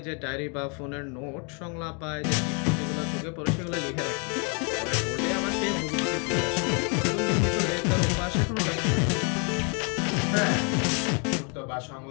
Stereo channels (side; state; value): right; quieter; 36.4 dB